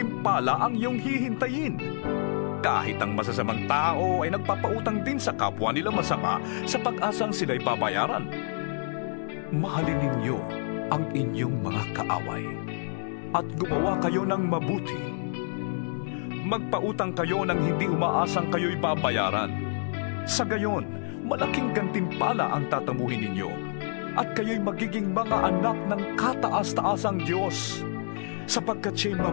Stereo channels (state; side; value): silent; right; digital silence